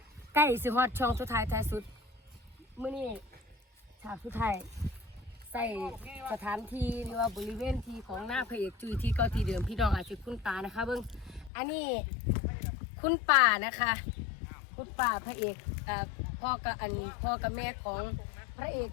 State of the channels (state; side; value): drops out; right; at 11.5 s